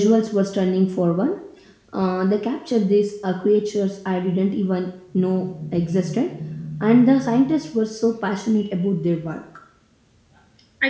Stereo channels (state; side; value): identical; both; correlation 1.00